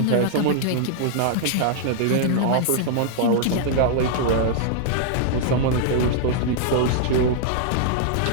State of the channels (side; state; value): both; different; correlation -0.01